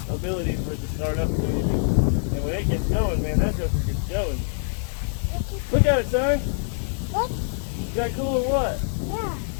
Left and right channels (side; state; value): right; silent; digital silence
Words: ability for it to start up. And when it gets going, man, that joker gets going. Look at it, son. What? Is that cool or what? Yeah.